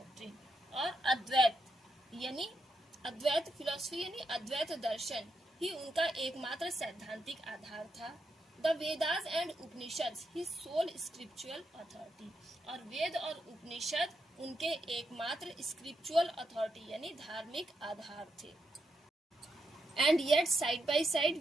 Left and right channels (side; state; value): both; normal; correlation 0.82